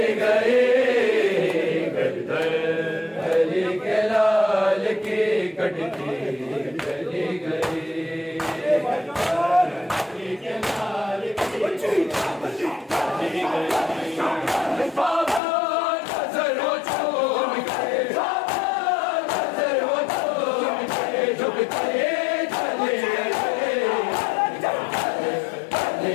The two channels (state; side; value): drops out; right; at 15.4 s